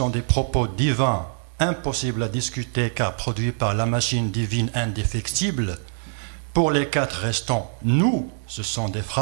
des propos divins, impossibles à discuter car produits par la machine divine indéfectible, pour les 4 restants, nous, ce sont des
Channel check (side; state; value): left; silent; digital silence